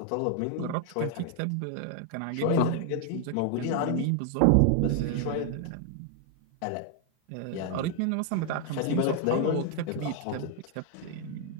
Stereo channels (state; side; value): different; both; correlation 0.00